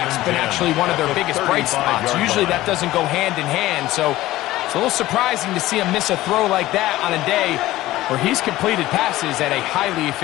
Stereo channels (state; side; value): quieter; right; 16.3 dB